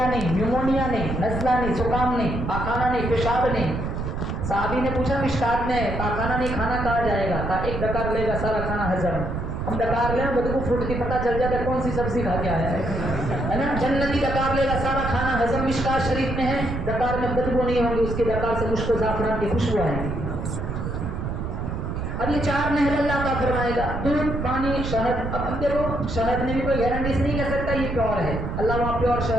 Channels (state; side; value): noise; right; rumble, 4 dB below the sound